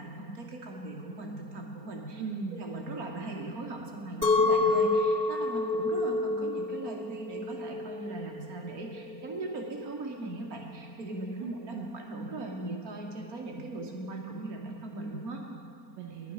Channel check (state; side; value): late; left; 4.3 ms